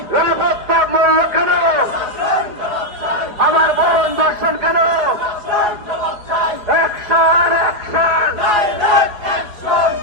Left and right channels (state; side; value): late; left; 4.8 ms